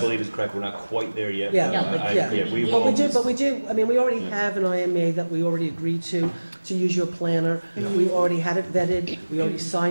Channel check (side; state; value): both; inverted; correlation -1.00